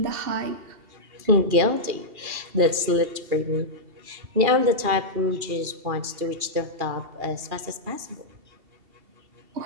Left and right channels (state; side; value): late; left; 2.7 ms